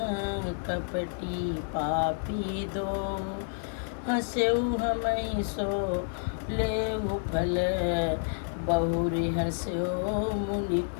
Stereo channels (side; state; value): right; silent; digital silence